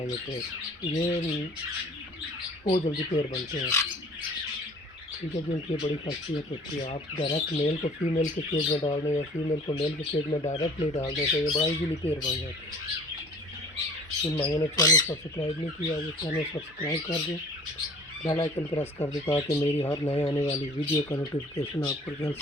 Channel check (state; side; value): normal; both; correlation 0.49